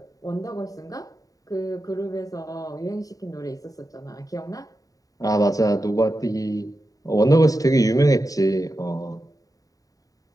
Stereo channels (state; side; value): late; right; 0.17 ms